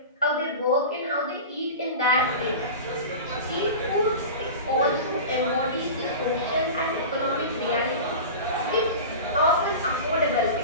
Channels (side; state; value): both; inverted; correlation -0.31